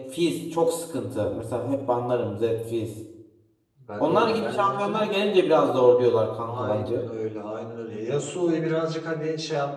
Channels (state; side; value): identical; both; correlation 1.00